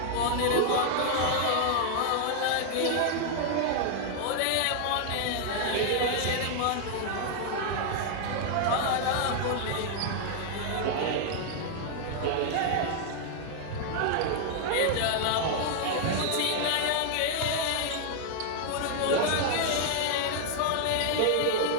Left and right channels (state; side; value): different; both; correlation 0.00